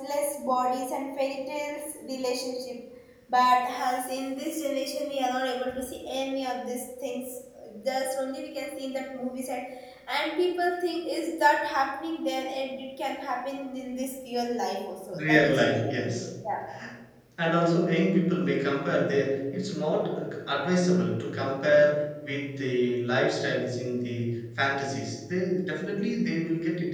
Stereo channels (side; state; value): both; identical; correlation 1.00